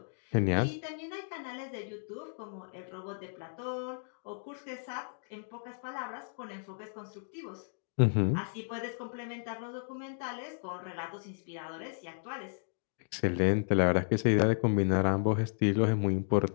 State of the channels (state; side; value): silent; right; digital silence